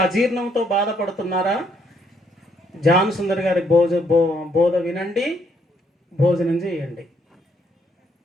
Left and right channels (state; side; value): normal; both; correlation 0.71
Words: అజీర్ణంతో బాధపడుతున్నారా? జాన్ సుందర్ గారి బోధ వినండి, భోజనం చేయండి.